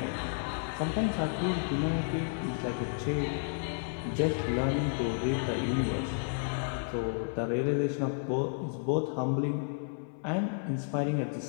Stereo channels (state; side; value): silent; right; 57 dB below the other